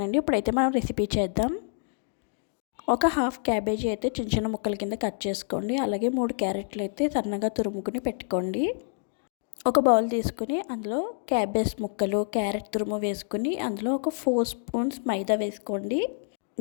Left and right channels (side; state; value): right; silent; digital silence